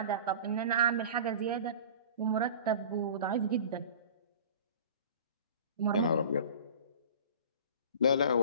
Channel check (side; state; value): both; inverted; correlation -0.40